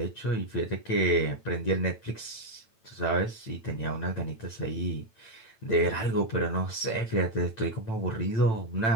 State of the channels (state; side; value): late; right; 9.0 ms